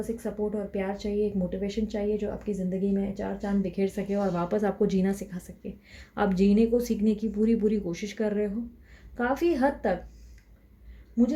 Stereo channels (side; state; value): both; identical; correlation 1.00